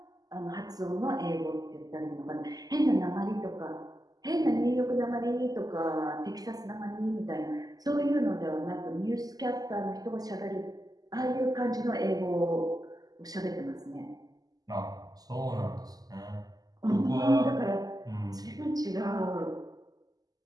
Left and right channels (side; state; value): left; late; 0.18 ms